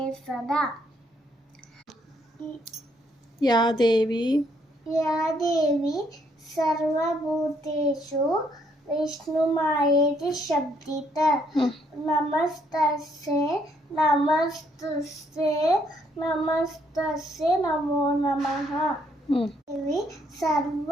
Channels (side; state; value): both; normal; correlation 0.70